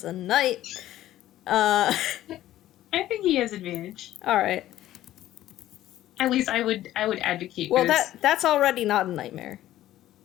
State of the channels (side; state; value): right; quieter; 13.8 dB